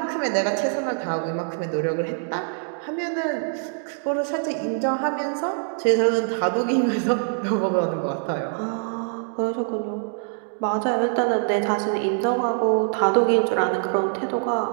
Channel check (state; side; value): silent; left; digital silence